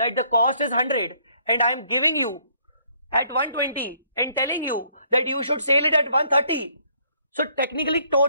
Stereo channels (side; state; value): both; inverted; correlation -0.65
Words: the cost is 100 and I am giving you at 120 and telling you that you should sell it at 130. So technically